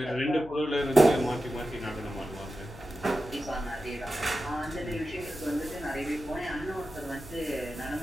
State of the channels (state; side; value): noise; left; hum, 18 dB below the sound